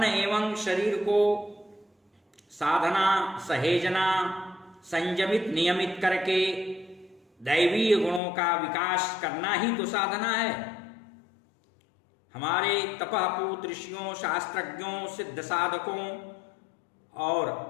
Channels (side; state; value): right; drops out; at 8.2 s